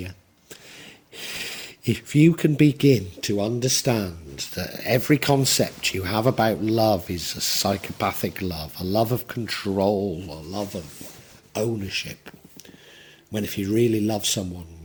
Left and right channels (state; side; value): identical; both; correlation 1.00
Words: If you can begin to understand that every concept you have about love is a psychopathic love, a love of control, a love of ownership, when if you really love someone,